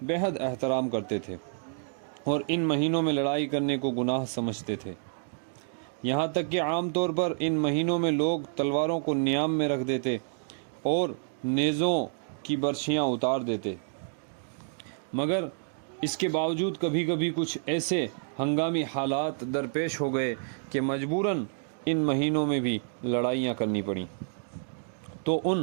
بہت احترام کرتے تھے اور ان مہینوں میں لڑائی کرنے کو گناہ سمجھتے تھے، یہاں تک کہ عام طور پر ان مہینوں میں لوگ تلواروں کو نیام میں رکھ دیتے اور نیزوں کی برچھیاں اتار دیتے۔ مگر اس کے باوجود کبھی کبھی کچھ ایسے ہنگامی حالات درپیش ہو گئے کہ مجبوراً ان مہینوں میں بھی لڑائیاں کرنی پڑیں، تو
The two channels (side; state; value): left; silent; digital silence